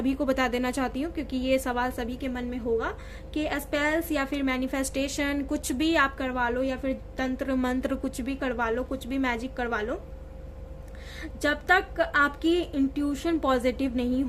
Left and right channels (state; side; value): identical; both; correlation 1.00